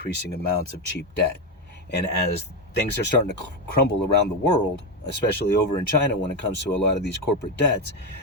amounts of cheap debt. And as things are starting to crumble around the world, especially over in China when it comes to a lot of these corporate debts,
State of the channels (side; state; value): both; normal; correlation 0.10